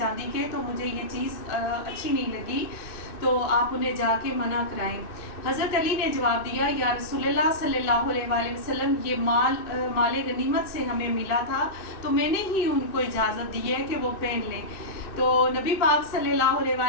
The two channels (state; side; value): late; right; 2.6 ms